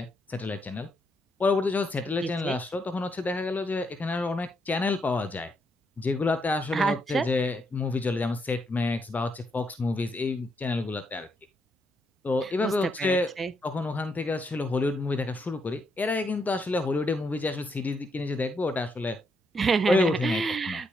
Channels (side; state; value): both; normal; correlation 0.77